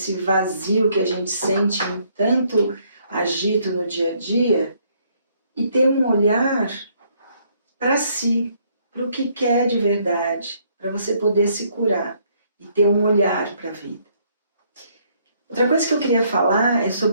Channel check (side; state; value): both; inverted; correlation -0.68